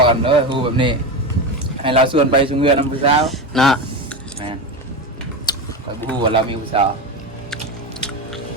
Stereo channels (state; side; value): normal; both; correlation 0.19